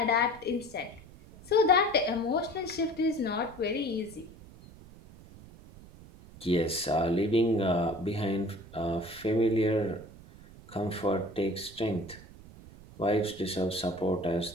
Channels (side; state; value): right; noise; rumble, 19 dB below the sound